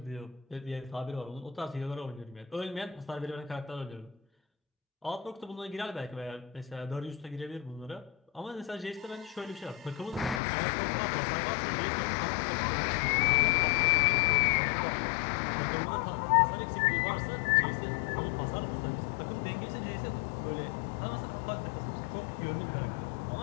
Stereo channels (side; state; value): right; drops out; at 10.4 s